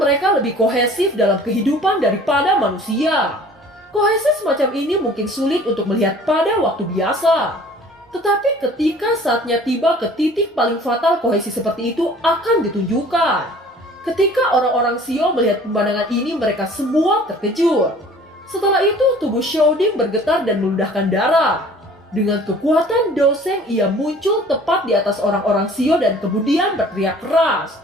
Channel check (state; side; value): normal; both; correlation 0.49